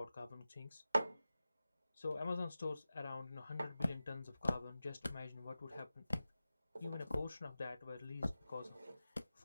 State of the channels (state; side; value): inverted; both; correlation -0.94